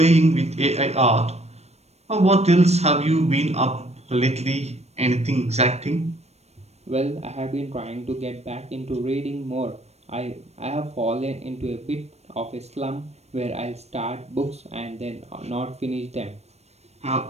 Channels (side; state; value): left; late; 0.31 ms